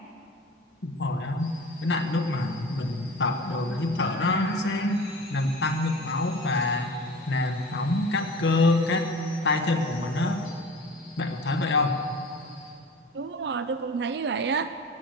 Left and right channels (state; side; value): normal; both; correlation 0.39